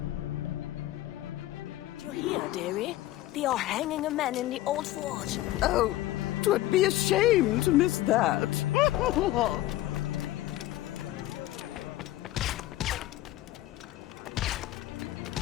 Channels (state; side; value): quieter; right; 15.5 dB